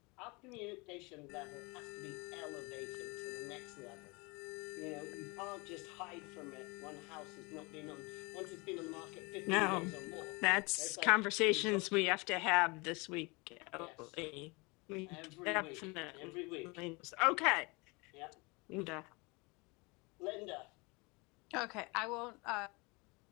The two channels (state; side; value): quieter; right; 27.5 dB